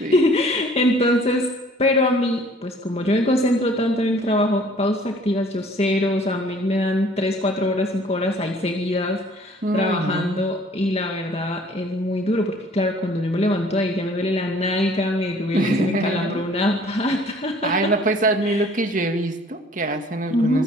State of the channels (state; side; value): normal; both; correlation 0.55